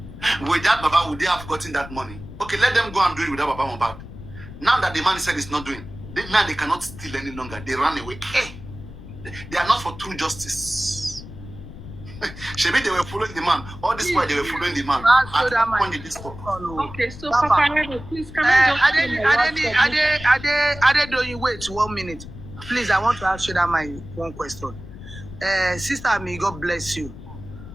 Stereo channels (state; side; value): noise; left; rumble, 14 dB below the sound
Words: Without Baba, would they have gotten that money? Okay, let them go and do it without Baba Mohbad. Now that the man said it's not doing, now they cannot steal any longer. They run away. Hey, they are not for true justice. Maybe they were following the man. All this while they were following the man. Okay, so Papariano, please come on. Wait 1 minute. Please, I want to ask you that my one question. Sister Ami, God bless you.